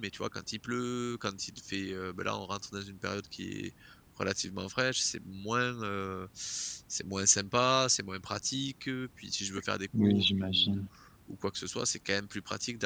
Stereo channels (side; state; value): both; identical; correlation 1.00